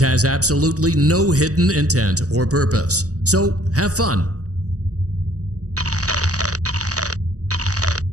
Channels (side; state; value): left; late; 0.66 ms